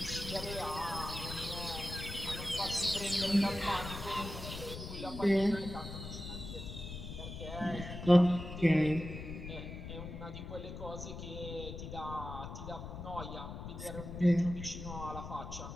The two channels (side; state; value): left; noise; rumble, 8 dB below the sound